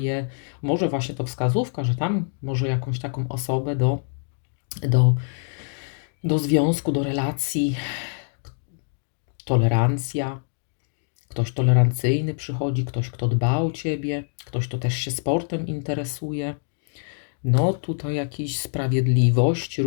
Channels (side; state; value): right; silent; digital silence